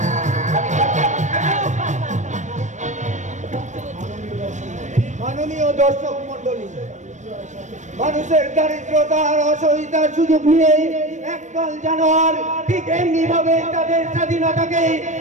মাননীয় দর্শক মন্ডলী, মানুষের দারিদ্রতা আর অসহায়তার সুযোগ নিয়ে একদল জানোয়ার ঠিক এমনি ভাবে তাদের স্বাধীনতাকে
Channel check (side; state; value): left; late; 0.35 ms